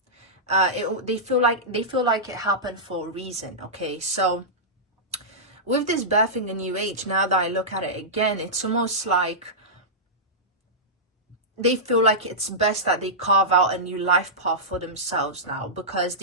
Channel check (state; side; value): normal; both; correlation -0.13